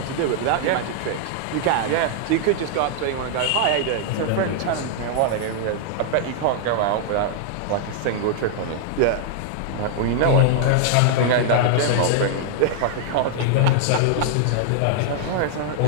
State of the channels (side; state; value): both; different; correlation -0.01